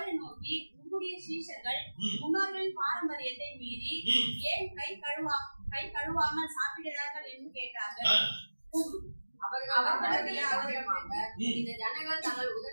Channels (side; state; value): both; inverted; correlation -1.00